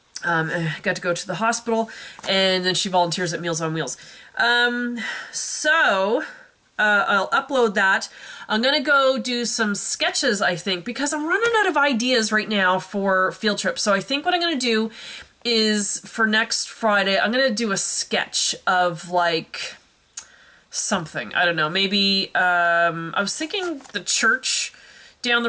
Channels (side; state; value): both; identical; correlation 1.00